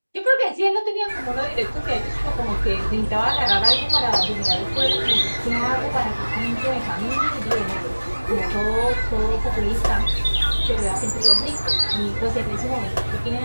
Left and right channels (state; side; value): inverted; both; correlation -1.00